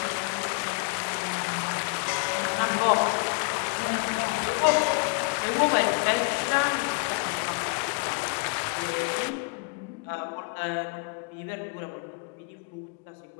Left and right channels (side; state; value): right; quieter; 33.7 dB